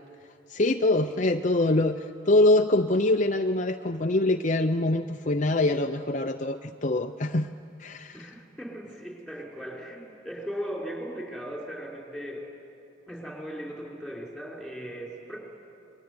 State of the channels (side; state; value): both; normal; correlation 0.36